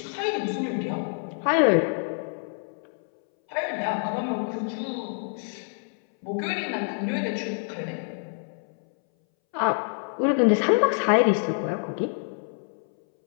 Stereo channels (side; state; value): right; silent; 60 dB below the other